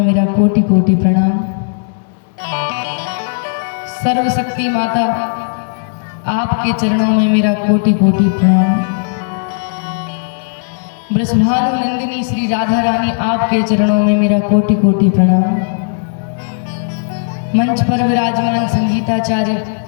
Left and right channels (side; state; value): right; silent; digital silence